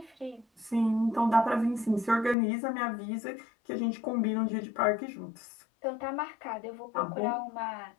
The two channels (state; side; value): drops out; right; at 2.4 s